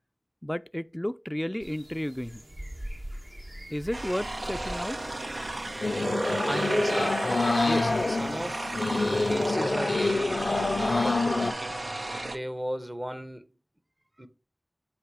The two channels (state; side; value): normal; both; correlation 0.97